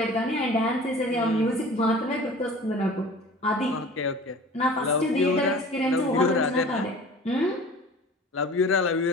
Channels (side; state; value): both; normal; correlation 0.42